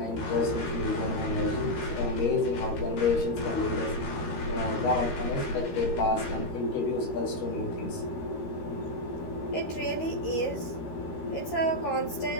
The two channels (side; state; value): right; late; 13 ms